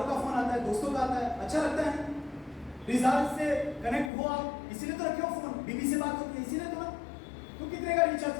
का फोन आता है, दोस्तों का आता है, अच्छा लगता है। रिश्तेदार से कनेक्ट हो आप, इसीलिए तो रखे हो फोन, बीबी से बात होती है इसीलिए तो ना। तो कितने का रिचार्ज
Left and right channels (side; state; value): right; drops out; at 4.1 s